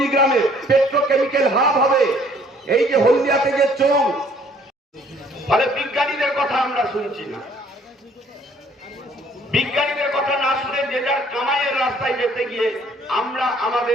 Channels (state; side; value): normal; both; correlation 0.60